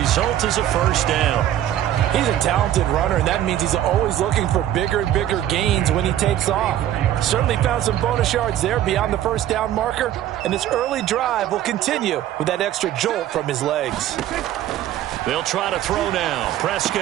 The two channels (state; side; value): quieter; left; 12.1 dB